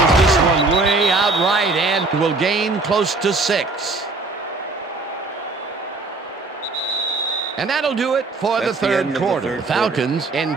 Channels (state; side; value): quieter; left; 3.6 dB